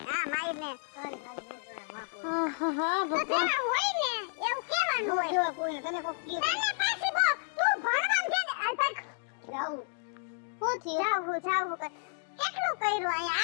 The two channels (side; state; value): right; silent; digital silence